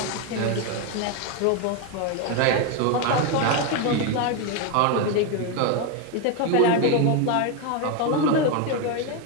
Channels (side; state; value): both; different; correlation 0.02